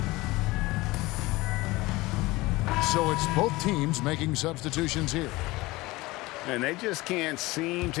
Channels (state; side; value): quieter; right; 20.7 dB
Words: So it's both teams making substitutions here. And they just can't seem